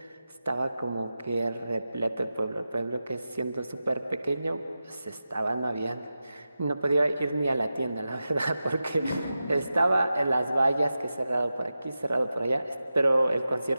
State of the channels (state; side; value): inverted; both; correlation -0.92